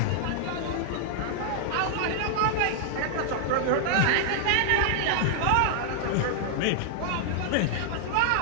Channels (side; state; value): both; different; correlation -0.01